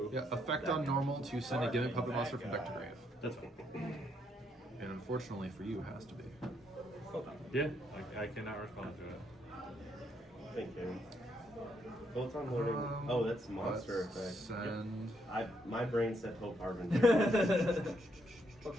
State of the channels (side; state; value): both; normal; correlation 0.74